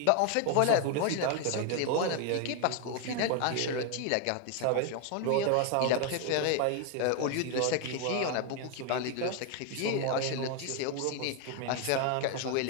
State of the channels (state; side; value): different; both; correlation 0.01